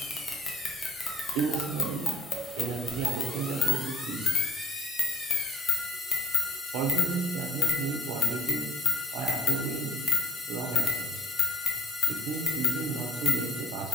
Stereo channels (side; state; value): both; normal; correlation 0.60